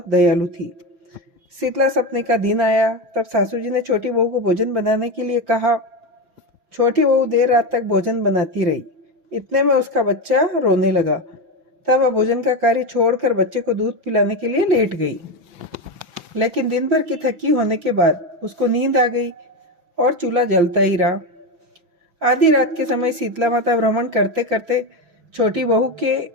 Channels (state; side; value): late; left; 6.0 ms